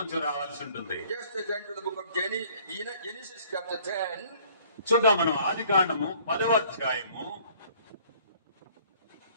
రావాల్సి ఉంటుంది. Just turn to the book of Genesis chapter 10. చూద్దాం మనం ఆదికాండము 10వ అధ్యాయము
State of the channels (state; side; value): inverted; both; correlation -0.57